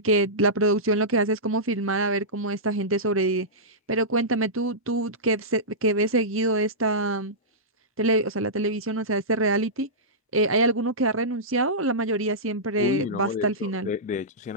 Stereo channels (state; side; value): normal; both; correlation -0.15